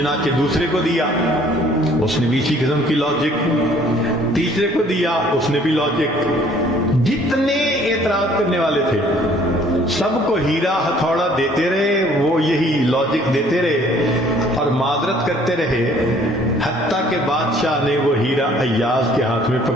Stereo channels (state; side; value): normal; both; correlation 0.58